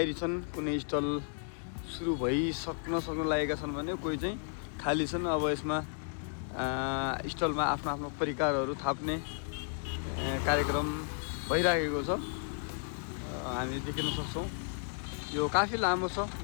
छन्, कुनै स्टल सुरु सक्न लागेका छन् भने कोही चाहिँ खाली छन्। अब यसमा स्टलमा आफ्नो आफ्नो परिकारहरू थाप्ने कार्यक्रम भइरहेको छ, हामीले देख्न सक्छौँ। यो काफी लामो छ,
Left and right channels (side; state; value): right; silent; 55 dB below the other